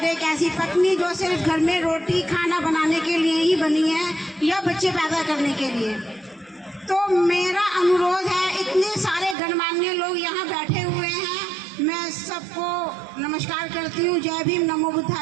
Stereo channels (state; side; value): drops out; left; at 9.3 s